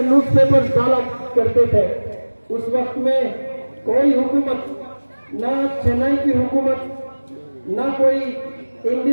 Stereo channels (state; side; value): inverted; both; correlation -1.00